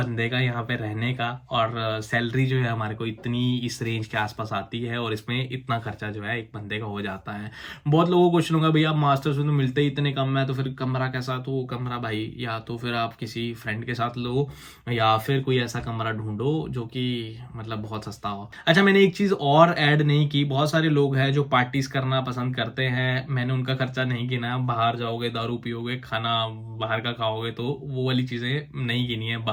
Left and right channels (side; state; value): both; identical; correlation 1.00